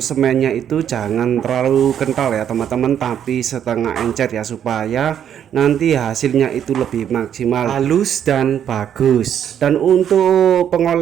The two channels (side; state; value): left; quieter; 9.3 dB